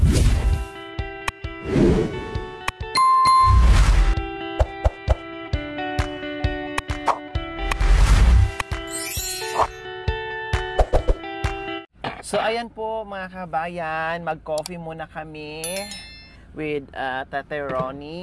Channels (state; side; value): identical; both; correlation 1.00